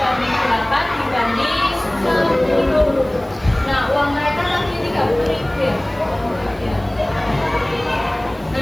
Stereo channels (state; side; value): noise; right; hiss, 27 dB below the sound